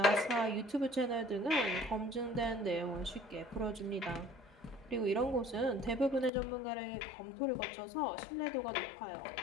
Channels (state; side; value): drops out; right; at 6.3 s